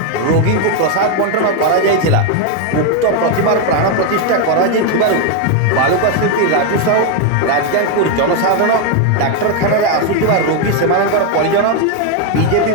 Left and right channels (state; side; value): different; both; correlation 0.01